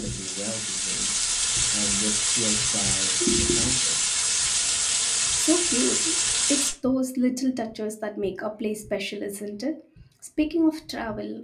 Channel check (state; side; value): identical; both; correlation 1.00